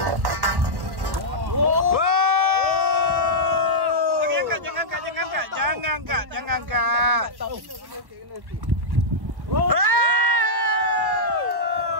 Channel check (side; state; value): left; late; 1.1 ms